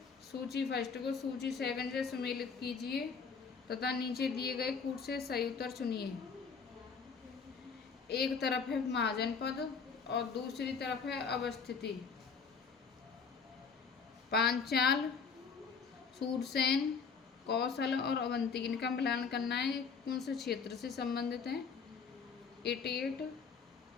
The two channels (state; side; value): quieter; right; 5.7 dB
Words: सूची फर्स्ट को सूची सेकंड से सुमेलित कीजिए तथा नीचे दिए गए कूट से सही उत्तर चुनिए। एक तरफ है महाजनपद और दूसरी तरफ है अवस्थिति। पांचाल, सूरसेन, कौशल और अवंती, इनका मिलान करना है कौन से क्षेत्र से संबंधित है।